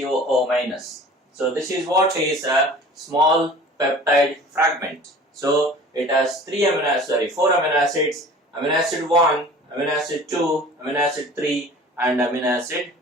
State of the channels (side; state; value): both; normal; correlation 0.44